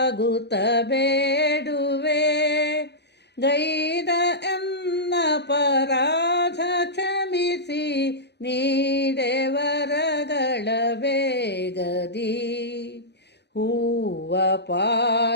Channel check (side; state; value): right; late; 0.49 ms